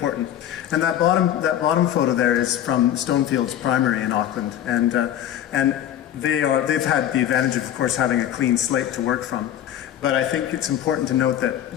And that bottom photo there is from Stonefields Primary in Auckland, and they've had the advantage of course having a clean slate to work from. But I think it's important to note that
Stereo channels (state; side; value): quieter; right; 11.1 dB